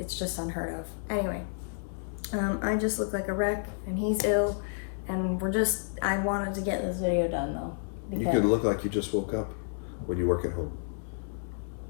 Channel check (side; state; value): right; silent; digital silence